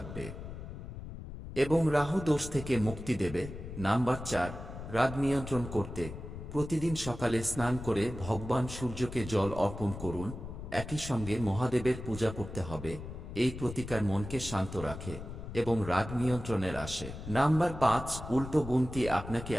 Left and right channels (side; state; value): left; noise; rumble, 10 dB below the sound